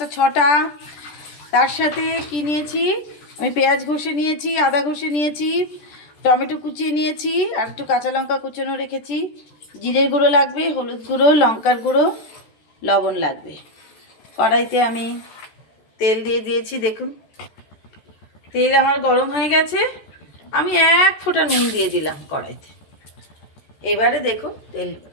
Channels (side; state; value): right; late; 14 ms